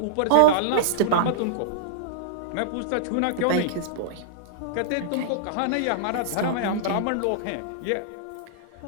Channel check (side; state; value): both; different; correlation -0.02